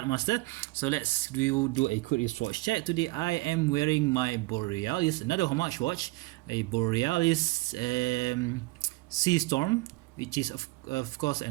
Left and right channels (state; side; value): quieter; left; 22.9 dB